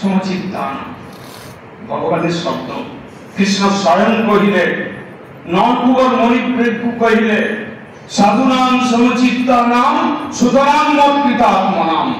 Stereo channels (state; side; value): identical; both; correlation 1.00